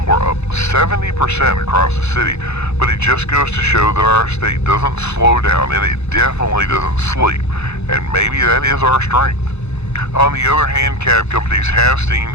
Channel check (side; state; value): right; late; 0.80 ms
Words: were up 70% across the city, but it just goes to show that our state doesn't slow down, and it definitely doesn't sleep, and maybe that is our strength. On the other hand, cab companies have seen